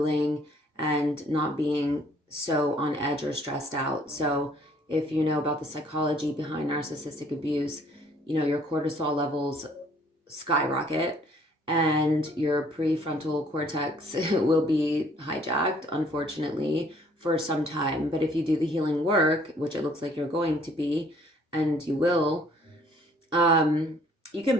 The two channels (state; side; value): normal; both; correlation 0.60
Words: and not being so on edge or stressed out. So if you know about the psychology behind narcissistic abuse, you know, your cortisol levels skyrocket and your prefrontal cortex will be hijacked, unfortunately, for some time. But if you do the healing work, which it looks like you're going to be, and you will, you can